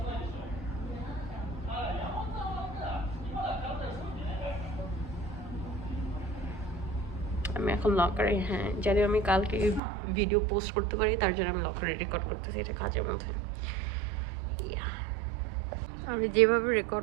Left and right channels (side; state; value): left; drops out; at 9.8 s